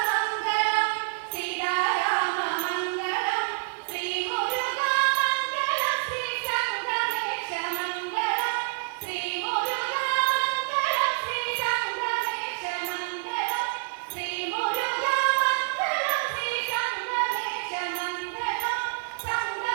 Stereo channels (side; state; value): left; silent; digital silence